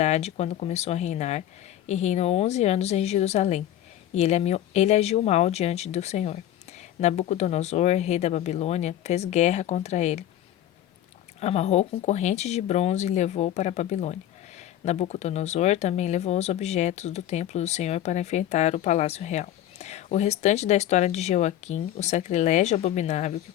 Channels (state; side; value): quieter; right; 12.1 dB